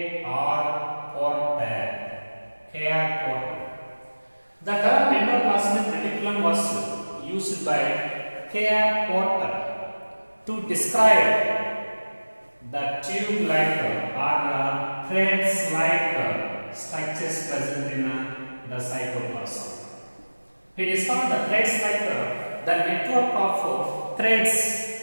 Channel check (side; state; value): both; inverted; correlation -1.00